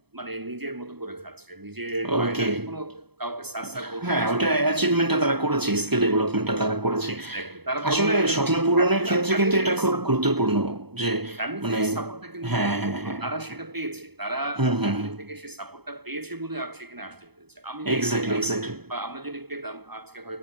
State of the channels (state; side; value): late; left; 0.98 ms